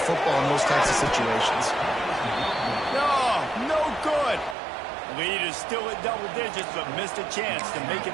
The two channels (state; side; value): drops out; left; at 4.5 s